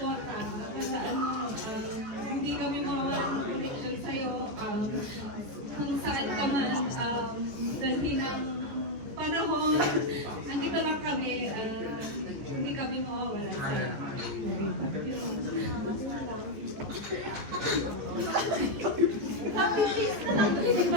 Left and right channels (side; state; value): left; late; 14 ms